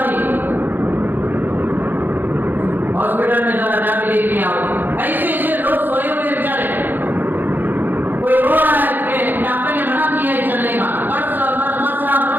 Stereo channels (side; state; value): left; late; 0.089 ms